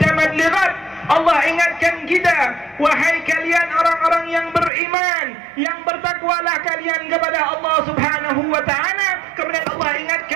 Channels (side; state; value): left; drops out; at 4.7 s